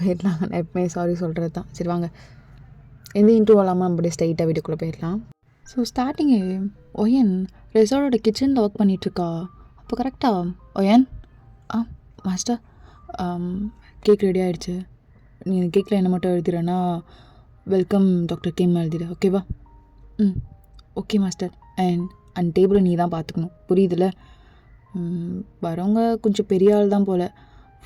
நான் எப்பவுமே சாரி சொல்கிறது தான். சரி வாங்க, எந்த இன்ட்ரூவ் இல்லாமல் நம்ம அப்படியே ஸ்ட்ரைட்டாக வீட்டுக்குள்ளே போயிடலாம். ஸோ ஸ்டார்டிங்கு ஒயன் ரெசார்ட்டோட கிச்சனில் ஒர்க் பண்ணிகிட்ருக்கா. அப்போ கரெக்டாக ஒயன் மாஸ்டர் கேக் ரெடி ஆகிடுச்சு. நீ கேக்கில் என்ன மட்டும் எழுதிடுறேன்னா வெல்கம் டாக்டர் கிம் எழுதிடு, ஓகேவா? Okay master. அண்ட் டேபிளை நீ தான் பார்த்துக்கணும், புரியுதுல்ல? வரவங்க கொஞ்சம் பெரிய ஆள் தான் போல்.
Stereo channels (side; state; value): both; identical; correlation 1.00